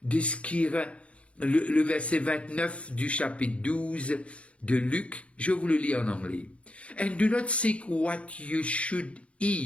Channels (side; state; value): right; late; 0.062 ms